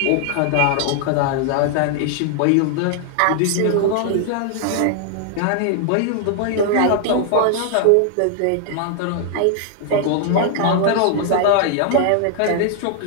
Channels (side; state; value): both; different; correlation 0.00